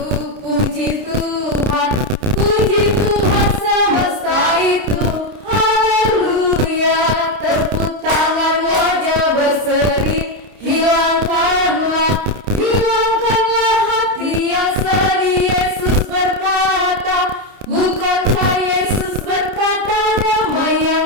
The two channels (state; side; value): late; left; 30 ms